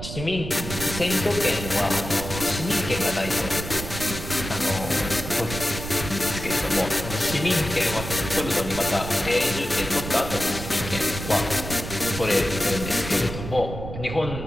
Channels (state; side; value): noise; right; rumble, 8 dB below the sound